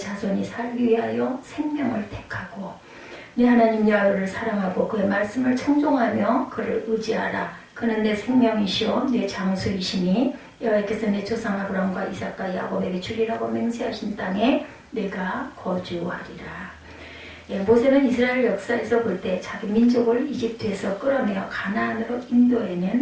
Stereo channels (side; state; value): both; identical; correlation 1.00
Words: 살기 위하여 생명을 택하고 내 하나님 야훼를 사랑하고 그의 말씀을 청종하며 그를 의지하라. 그는 내 생명이시오 내 장수이시니 여호와께서 내 조상 아브라함과 이삭과 야곱에게 주리라고 맹세하신 땅에 내가 거주하리라. 모세는 이스라엘 역사에서 볼 때 자기 민족을 이집트에서 끌어내어 가나안으로